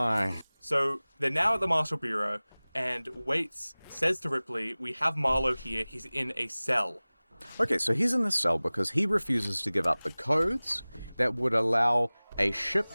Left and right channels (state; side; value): inverted; both; correlation -1.00